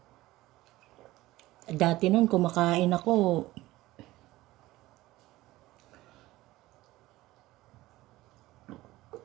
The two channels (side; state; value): left; quieter; 17.6 dB